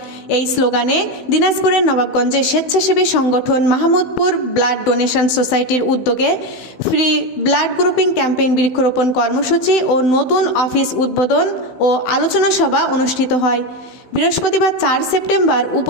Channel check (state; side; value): late; right; 16 ms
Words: এই স্লোগানে দিনাজপুরের নবাবগঞ্জে স্বেচ্ছাসেবী সংগঠন মাহমুদপুর ব্লাড ডোনেশন সোসাইটির উদ্যোগে ফ্রি ব্লাড গ্রুপিং ক্যাম্পেইন বৃক্ষরোপণ কর্মসূচি ও নতুন অফিস উদ্বোধন ও আলোচনা সভা অনুষ্ঠিত হয়। বৃহস্পতিবার 4 সেপ্টেম্বর